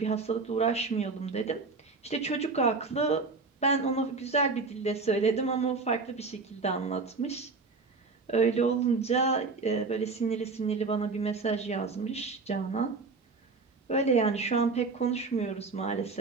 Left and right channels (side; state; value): left; quieter; 4.1 dB